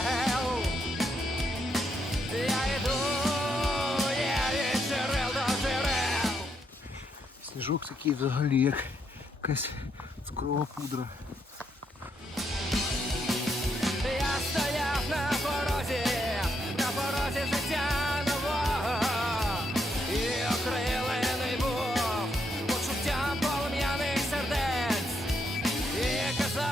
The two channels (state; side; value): normal; both; correlation 0.77